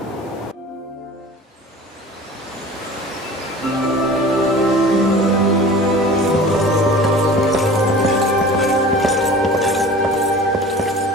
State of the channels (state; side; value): normal; both; correlation 0.41